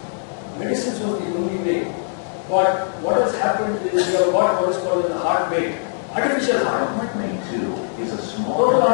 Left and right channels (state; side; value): silent; right; digital silence